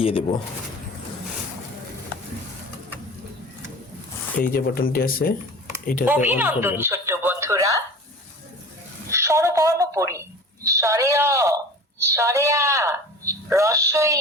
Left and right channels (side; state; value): both; normal; correlation 0.37